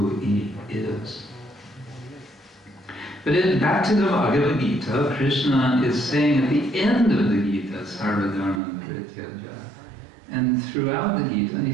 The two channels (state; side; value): drops out; left; at 8.6 s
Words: he is. But back to the Bhagavad-gita, Krishna is saying at the end of the Gita, Sarva Dharma Parityaja. And throughout the Gita,